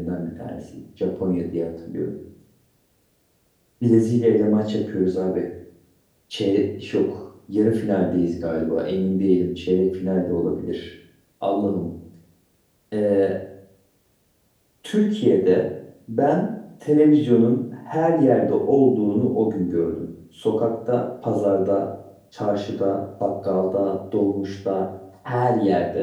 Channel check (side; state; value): both; identical; correlation 1.00